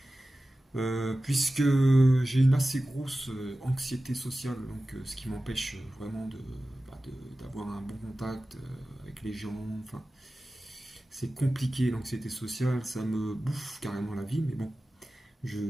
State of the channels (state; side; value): normal; both; correlation 0.95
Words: Puisque j'ai une assez grosse anxiété sociale, donc ce qui m'empêche vraiment d'avoir un bon contact avec les gens. Enfin, c'est compliqué l'anxiété sociale, ça me bouffe carrément la vie, mais bon,